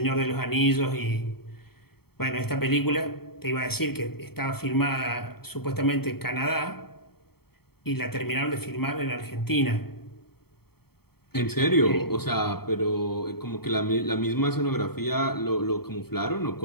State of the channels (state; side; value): late; right; 0.95 ms